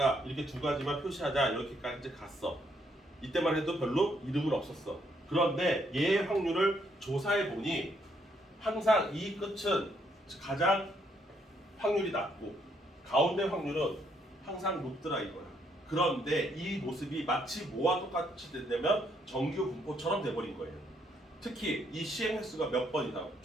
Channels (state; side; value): normal; both; correlation 0.72